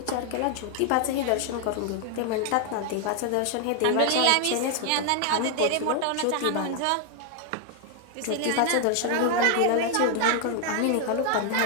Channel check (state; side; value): different; both; correlation 0.00